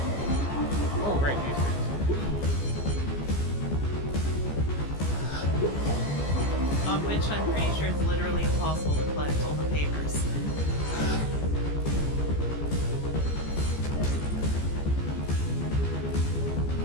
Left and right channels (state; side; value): late; right; 14 ms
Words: Oh, right, these things. On which I'm pretty sure it's literally impossible to collect all the papers.